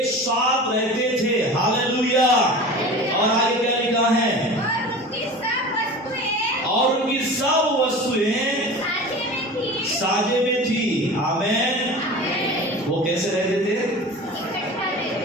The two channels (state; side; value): normal; both; correlation 0.35